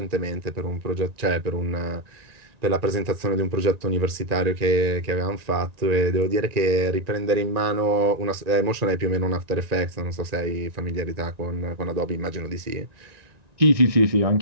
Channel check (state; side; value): late; left; 1.9 ms